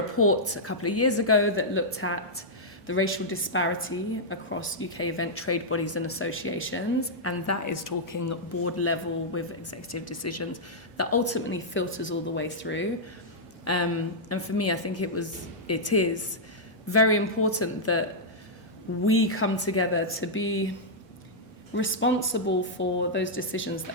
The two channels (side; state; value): both; normal; correlation -0.08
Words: a couple of years ago that looked at the racial disparity across UK event trade bodies and associations, and that is talking board level with executive decisions that ultimately filters all the way through. And for me, I think it is very important that we come together to be responsible for those decisions